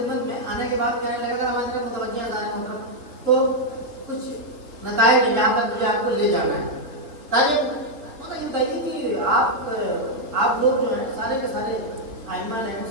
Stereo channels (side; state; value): left; late; 3.5 ms